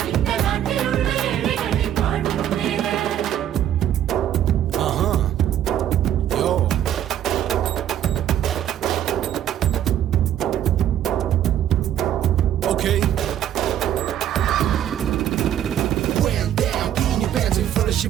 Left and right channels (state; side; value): quieter; left; 10.9 dB